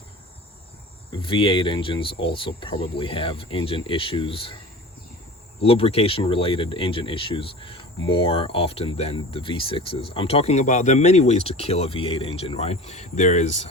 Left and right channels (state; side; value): normal; both; correlation 0.37